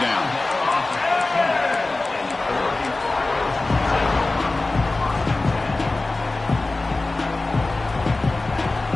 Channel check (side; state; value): right; quieter; 3.2 dB